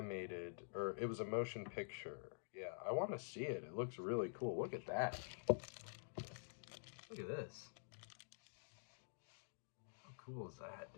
or it was a motion picture. Yeah, I want to see it. It looks really cool. Look at that. Look at this. How cool is that,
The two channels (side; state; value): right; silent; digital silence